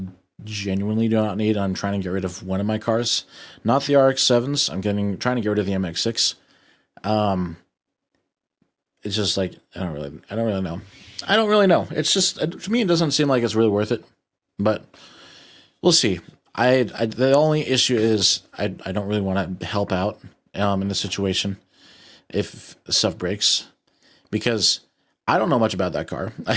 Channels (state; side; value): identical; both; correlation 1.00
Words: genuinely do not need. I'm trying to get rid of one of my cars, not the RX-7s. Trying to get rid of the MX-6. It's just like I don't really know. I don't really know. It's just to me, it doesn't seem like it's really worth it. But we'll see. The only issue is I don't really want to help out in the situation if stuff breaks, because I don't know much about that car.